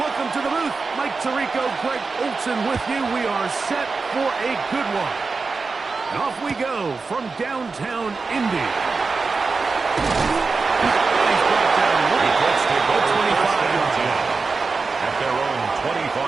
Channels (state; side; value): quieter; left; 4.3 dB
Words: to the booth. Mike Tirico, Greg Olson with you. We are set for a good one. And off we go from downtown Indy. He's brought down the Colts take over 25 yards at their own